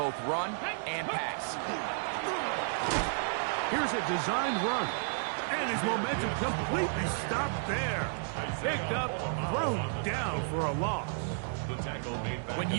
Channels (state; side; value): silent; left; digital silence